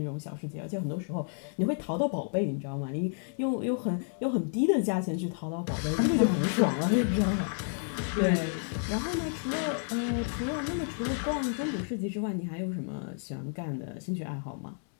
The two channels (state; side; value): silent; right; 57 dB below the other